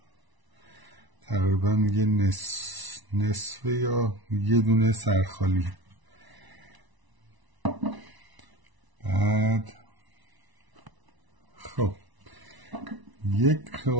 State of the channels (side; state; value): left; late; 1.0 ms